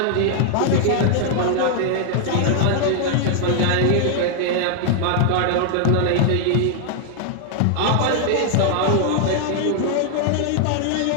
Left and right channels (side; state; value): both; different; correlation 0.00